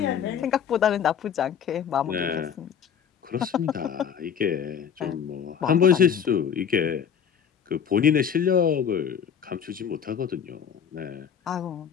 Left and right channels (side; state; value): right; quieter; 7.9 dB